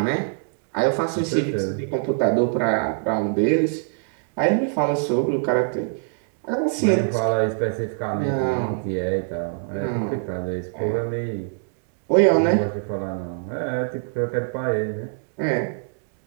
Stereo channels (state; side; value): silent; left; digital silence